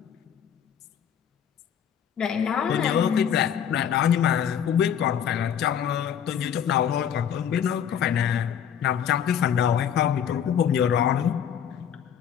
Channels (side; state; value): right; quieter; 8.7 dB